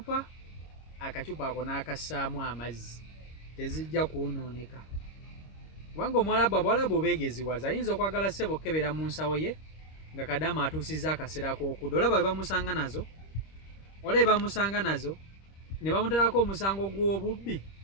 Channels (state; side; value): late; right; 26 ms